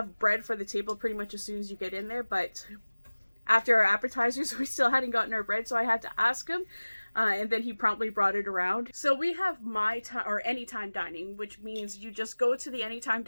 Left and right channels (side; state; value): both; inverted; correlation -1.00